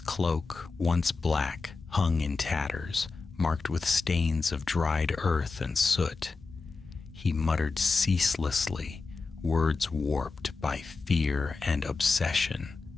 cloak, once black, hung in tatters, marked with stains of dried earth and soot. He muttered ceaselessly, words warped by fear and obsession.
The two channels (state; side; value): quieter; right; 4.2 dB